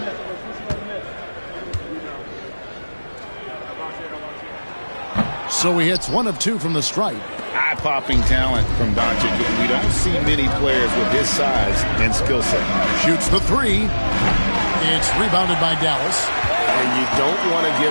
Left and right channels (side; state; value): both; inverted; correlation -1.00